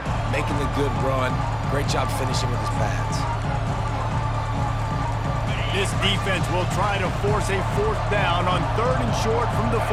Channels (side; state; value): both; identical; correlation 1.00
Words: making the good run. Great job finishing with his pads. This defense will try to force a 4th down on 3rd and short from the